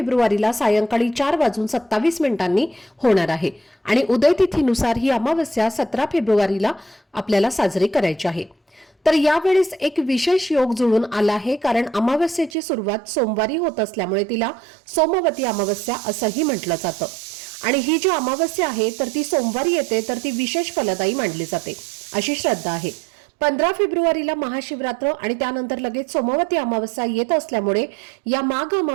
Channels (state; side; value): drops out; left; at 12.5 s